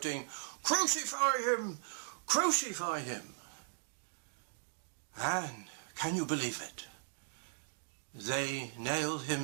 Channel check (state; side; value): silent; left; digital silence